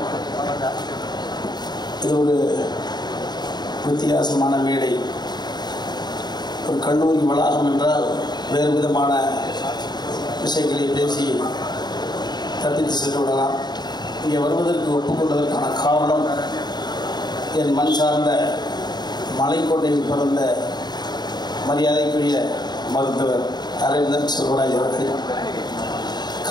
இது ஒரு வித்தியாசமான மேடை. ஒரு கல்லூரி வளாகம் என்றால் வேறு விதமான விஷயங்களை பேசி தப்பித்து சென்று விடலாம். இங்கே வருவதற்கு ஒப்புக்கொண்டதற்கான காரணம் என் மண் சார்ந்த மலைக்கோட்டையில் பிறந்த மரியாதைக்குரிய மருத்துவர் அரவிந்தன் செல்வராஜ் அவர்கள்.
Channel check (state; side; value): late; right; 0.20 ms